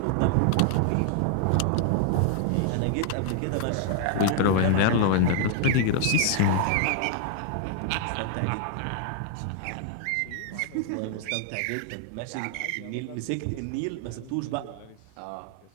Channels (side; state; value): both; different; correlation -0.01